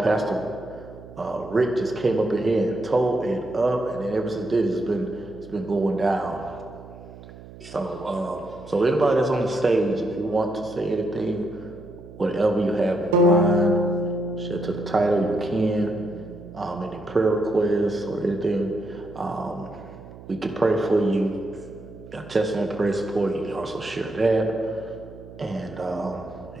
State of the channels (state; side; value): noise; right; hum, 17 dB below the sound